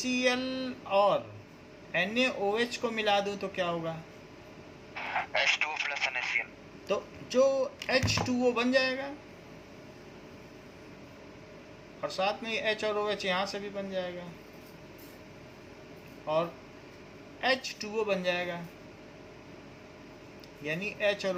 और NaOH को मिला दूं तो क्या होगा? H2O + NaCl। तो जो H2O बन जाएगा, और साथ में H और OH यहाँ से भी बन जाएगा, और H2O बन जाएगा, यानी H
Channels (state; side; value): identical; both; correlation 1.00